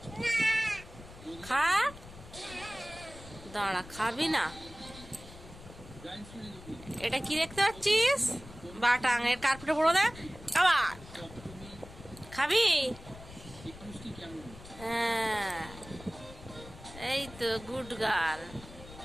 খা, দাঁড়া, খাবি না? এটা কি দেখতে পাচ্ছিস? বাটাং এর কার্পেটে পড়ো দে। আবার খাবি? হ্যাঁ, এই তো গুড গার্ল।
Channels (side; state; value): left; noise; rumble, 17 dB below the sound